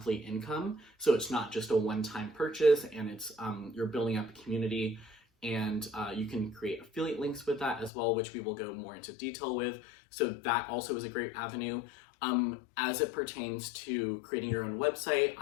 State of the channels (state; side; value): drops out; right; at 7.9 s